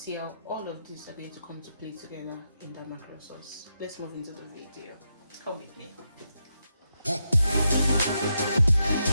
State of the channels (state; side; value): inverted; both; correlation -0.83